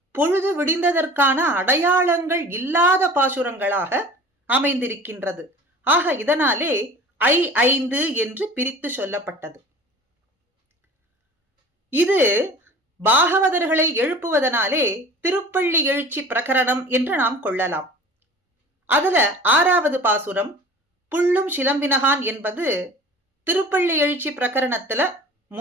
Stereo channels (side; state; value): both; normal; correlation 0.42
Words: பொழுது விடிந்ததற்கான அடையாளங்கள் இல்லாத பாசுரங்களாக அமைந்திருக்கின்றது. ஆக இதனாலே 5 என்று பிரித்து சொல்லப்பட்டது. இது பாகவதர்களை எழுப்புவதனாலே திருப்பள்ளி எழுச்சி பிரகரணம் என்று நாம் கொள்ளலாம். அதுல 6வது பாசுரம் புள்ளும் சிலம்பினகான் என்பது திருப்பள்ளி எழுச்சி பிரகரணத்துல